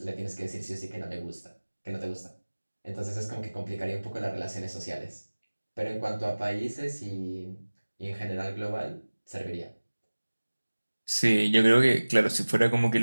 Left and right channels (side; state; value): both; inverted; correlation -1.00